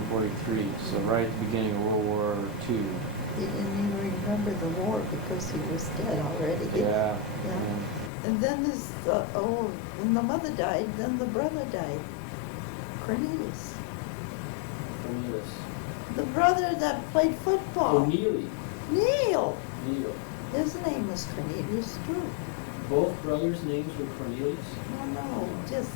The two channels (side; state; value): right; drops out; at 8.1 s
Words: so right at the beginning of World War II. He didn't even remember the war because he was dead already. Yeah. And then when the mother died, then the brother died. Cornelius. Cornelius. The brother that played football. Oh, Neely. Neil. Neil. His name was Cornelius too. Both brothers' names were Cornelius? No, No. just